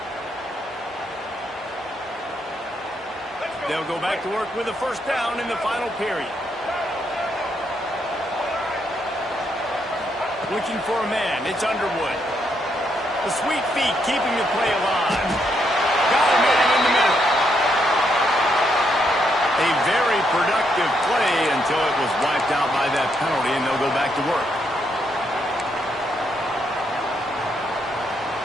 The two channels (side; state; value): both; normal; correlation 0.77